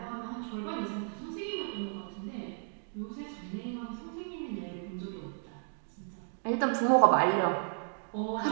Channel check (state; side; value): silent; left; 55 dB below the other